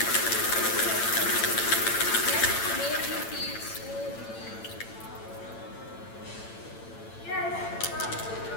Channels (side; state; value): right; late; 8.9 ms